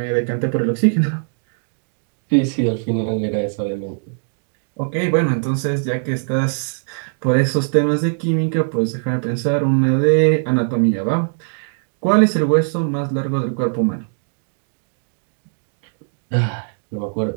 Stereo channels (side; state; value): left; silent; digital silence